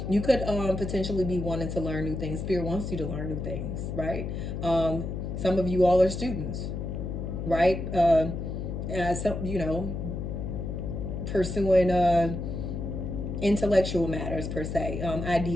you could potentially be wanting to learn new things. Spirit wants you to learn new things, right? Some of you all are students, right? So pursuing intellectual matters per se,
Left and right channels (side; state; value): left; noise; hum, 4 dB below the sound